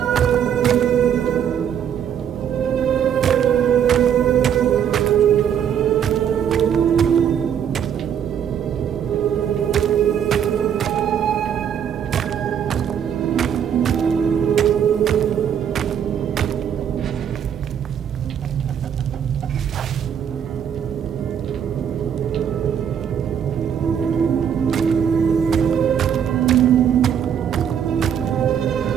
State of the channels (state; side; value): quieter; left; 8.7 dB